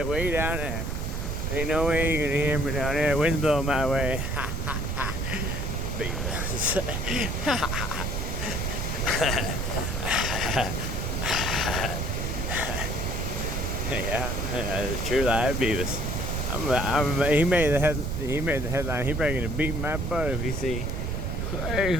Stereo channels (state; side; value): noise; right; rumble, 2 dB below the sound